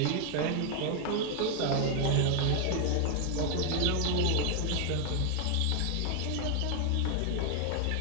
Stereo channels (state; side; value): different; both; correlation 0.00